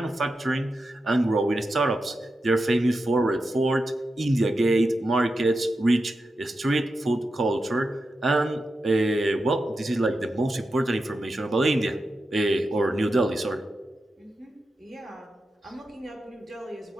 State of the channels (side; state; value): both; normal; correlation 0.89